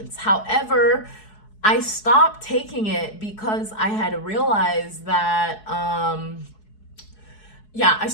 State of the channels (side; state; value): right; late; 4.7 ms